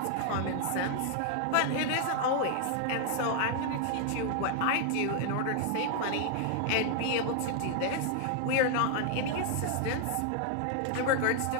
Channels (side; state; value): both; different; correlation 0.00